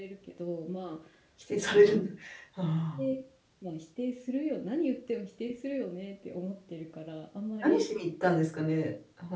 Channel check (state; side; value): identical; both; correlation 1.00